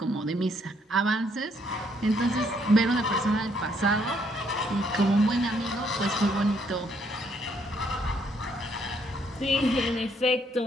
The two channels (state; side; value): normal; both; correlation 0.70